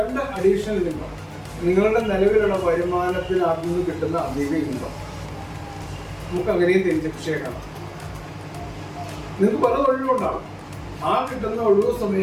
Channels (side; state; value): both; identical; correlation 1.00